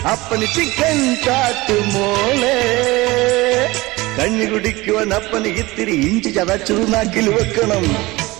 അപ്പന് ചിക്കൻ കാട്ടുമോളെ കഞ്ഞി കുടിക്കുവാൻ അപ്പന് ഇത്തിരി ഇഞ്ചി ചതച്ചു നാക്കിൽ വെക്കണം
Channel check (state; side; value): quieter; left; 21.0 dB